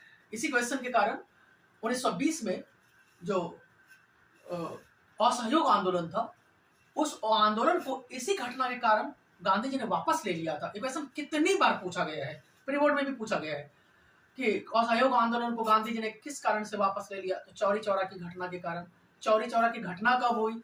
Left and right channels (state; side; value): identical; both; correlation 1.00